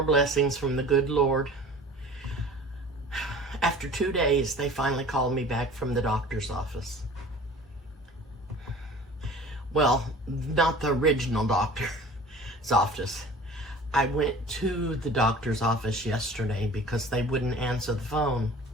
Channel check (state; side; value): normal; both; correlation 0.43